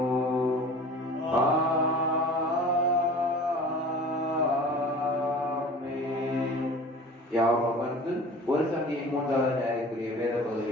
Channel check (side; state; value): both; normal; correlation 0.41